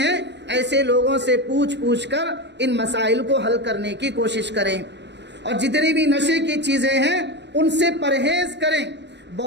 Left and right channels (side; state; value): left; late; 0.51 ms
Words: ایسے لوگوں سے پوچھ کر ان مسائل کو حل کرنے کی کوشش کریں، اور جتنی بھی نشے کی چیزیں ہیں ان سے پرہیز کریں۔